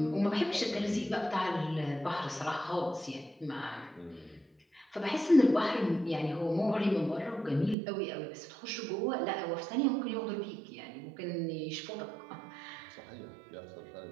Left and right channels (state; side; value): drops out; left; at 7.8 s